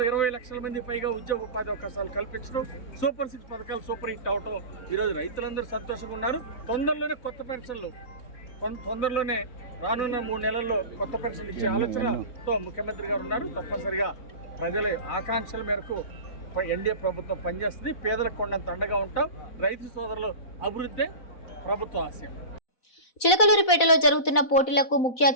20 లక్షల మంది పైగా ఉద్యోగ ఉపాధి అవకాశాలు కల్పించడం, సూపర్ సిక్స్ పథకాలు సూపర్ హిట్ అవటం, ఈరోజు రైతులందరూ సంతోషంగా ఉన్నారు. తొందరలోనే కొత్త పెన్షన్లు, తొందరలోనే రానున్న 3 నెలల్లో కొత్త పెన్షన్లు ఇచ్చే ఆలోచనతో ముఖ్యమంత్రి గారు ఉన్నారు. తప్పనిసరిగా ప్రజల ఆకాంక్షల మేరకు ఎన్డీఏ ప్రభుత్వం పనిచేస్తుంది. పేదలకు కొండంత అండగా ఉంటాం. రైతు సోదరులు అభివృద్ధి ప్రభుత్వ ఆశయం. చిలకలూరిపేటలో జరుగుతున్న పోటీలకు ముఖ్య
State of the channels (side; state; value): right; late; 4.0 ms